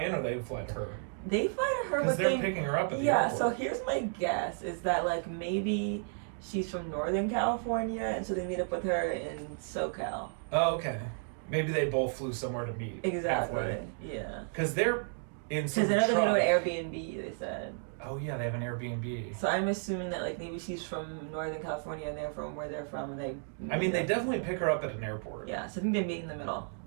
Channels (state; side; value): silent; left; 56 dB below the other